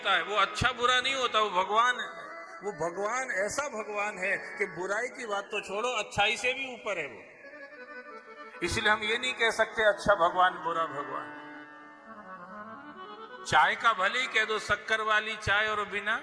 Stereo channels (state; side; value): identical; both; correlation 1.00